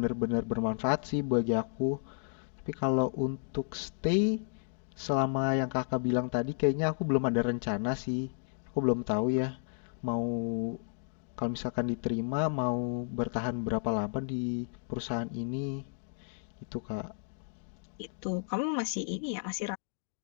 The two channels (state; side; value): silent; right; digital silence